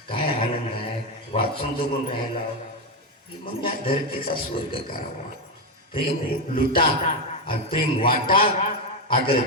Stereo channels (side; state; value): both; normal; correlation 0.08